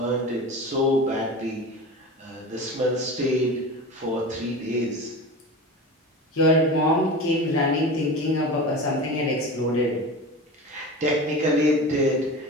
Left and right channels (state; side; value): normal; both; correlation 0.31